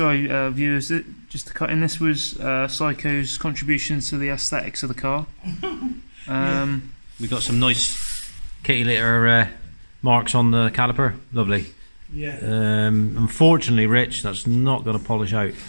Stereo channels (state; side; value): inverted; both; correlation -1.00